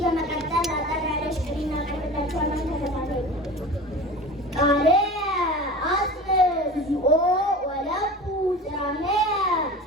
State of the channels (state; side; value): normal; both; correlation 0.35